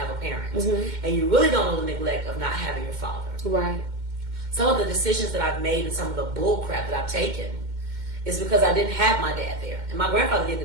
a parent. Mm-hmm. And you really don't know the neglect of not having your father. Right. Some of the decisions that I've made and some of the bull crap that I've taken is because I didn't have my dad there. And my grandfather did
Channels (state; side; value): late; left; 2.1 ms